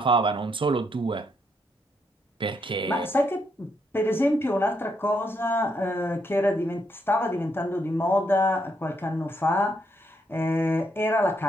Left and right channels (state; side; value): normal; both; correlation 0.76